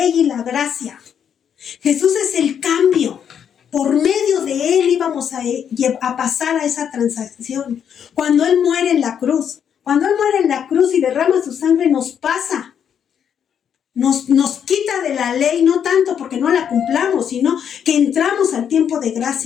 y la gracia. Jesús es el cambio. Por medio de Él íbamos a pasar a esa transacción. Cuando Él muere en la cruz. Cuando Él muere en la cruz y derrama su sangre, nos pasa. Nos quita de la ley, no tanto porque no la cumplamos, sino que entramos al tiempo de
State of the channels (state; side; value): quieter; right; 8.3 dB